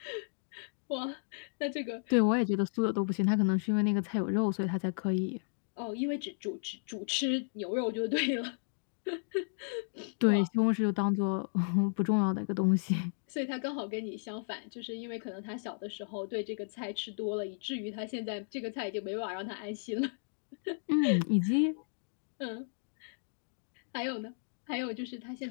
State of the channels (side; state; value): right; silent; digital silence